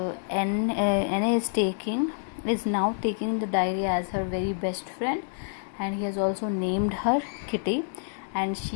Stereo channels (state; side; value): silent; right; digital silence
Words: Anne is now taking the diary as her very best friend, and he has also named her Kitty. And